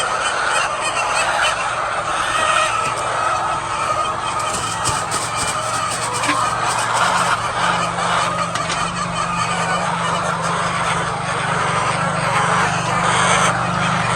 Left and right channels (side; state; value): both; identical; correlation 1.00